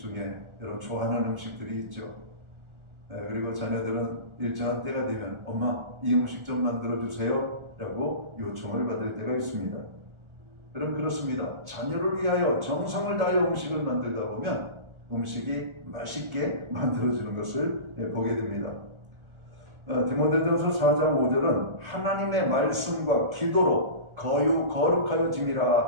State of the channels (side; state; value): left; late; 1.4 ms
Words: 여러분 좋아하는 음식들이 있죠. 그리고 자녀들은 일정한 때가 되면 엄마 이 음식 좀 만들어주세요 라고 요청을 받을 때가 있습니다. 여러분 그렇습니다. 자녀를 위하여 정성을 다하여 음식을 만들다 보면 음식이 맛있게 만들어지는 것을 보게 됩니다. 디모데전서 4장 5절은 하나님의 말씀과 기도로